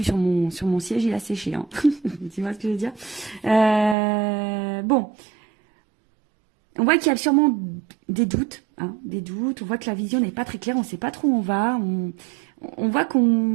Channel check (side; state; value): left; drops out; at 4.0 s